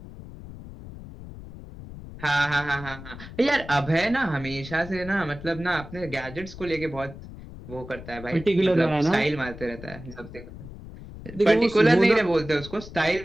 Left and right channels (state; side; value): noise; left; rumble, 14 dB below the sound